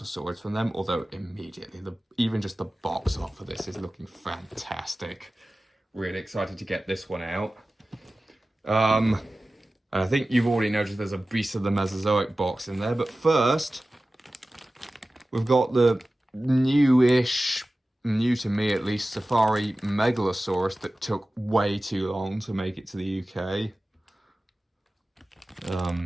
swords from them, although immediately, even just the box art for this is looking fantastic. Really excited to get this one out. And I think you've already noticed there's a Beast of the Mesozoic box in there, but first, we've got the new-ish, new to me at least, Safari Megalosaurus that took way too long to make it to the UK.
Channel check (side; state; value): both; normal; correlation 0.96